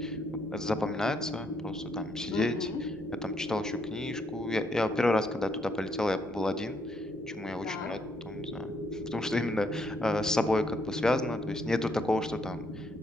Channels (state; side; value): normal; both; correlation 0.73